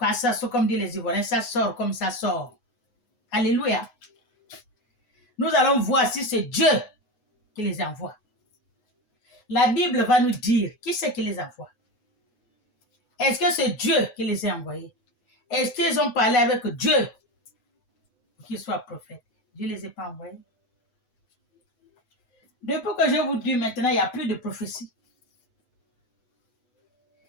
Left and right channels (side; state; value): right; late; 8.1 ms